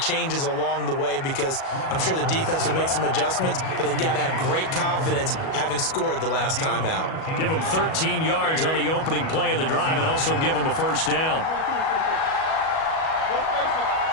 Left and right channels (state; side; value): late; right; 37 ms